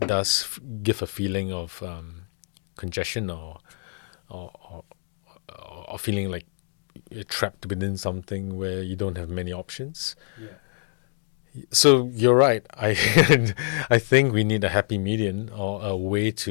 does give a feeling of congestion or feeling like you're trapped within something where you don't have many options. Yeah. So you're right. I think we need a happy median, or a way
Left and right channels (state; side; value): silent; right; digital silence